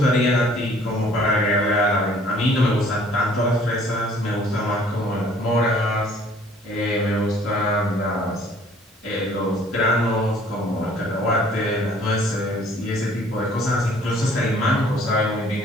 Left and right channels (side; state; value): both; normal; correlation 0.56